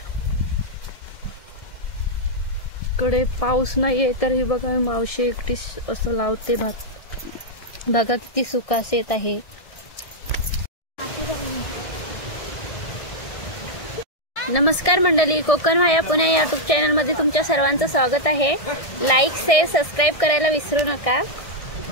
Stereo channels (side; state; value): right; late; 1.7 ms